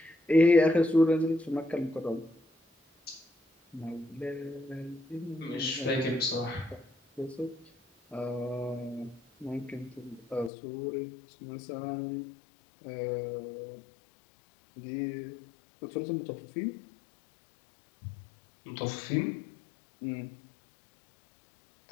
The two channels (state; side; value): drops out; right; at 10.5 s